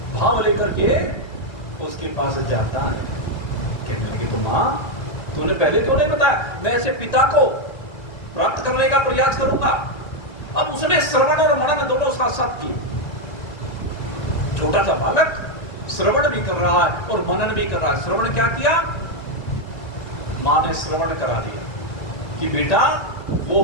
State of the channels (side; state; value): right; late; 1.9 ms